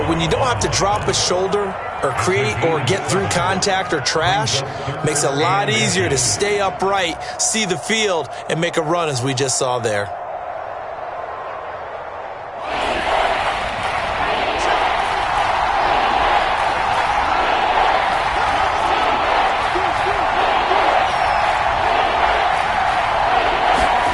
when you don't have to drop a shoulder or create or get through contact or trash, makes it a lot easier to stay upright, see the field, and make a run as we just saw there.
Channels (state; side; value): identical; both; correlation 1.00